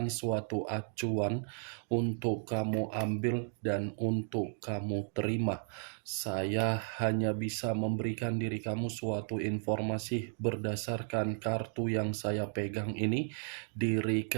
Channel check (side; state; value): left; silent; 55 dB below the other